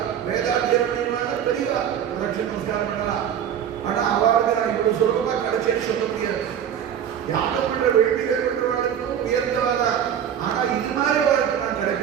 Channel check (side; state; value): left; quieter; 9.1 dB